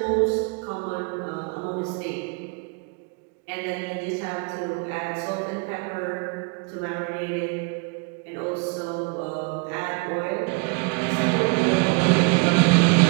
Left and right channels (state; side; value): quieter; left; 31.3 dB